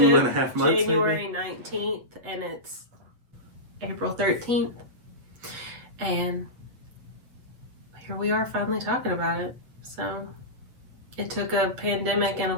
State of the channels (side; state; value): left; late; 8.1 ms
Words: 2.5 months, January 19th and it's April 13th. And here we are finally talking about it. So it took a pandemic and a